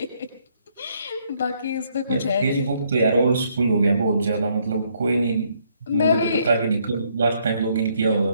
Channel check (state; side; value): inverted; both; correlation -0.70